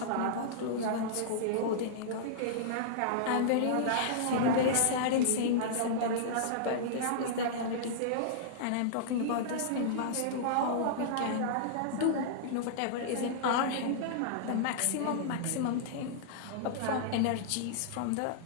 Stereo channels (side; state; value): both; different; correlation -0.02